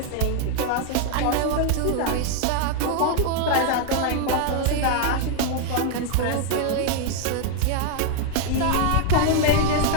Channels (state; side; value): different; both; correlation 0.00